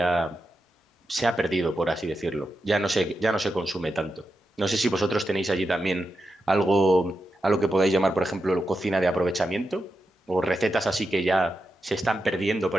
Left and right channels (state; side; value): normal; both; correlation 0.88